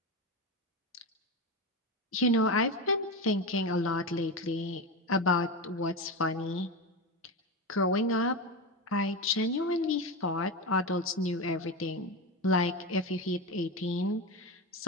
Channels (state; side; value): normal; both; correlation 0.18